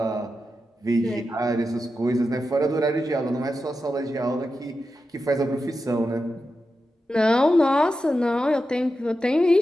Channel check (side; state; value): both; normal; correlation 0.90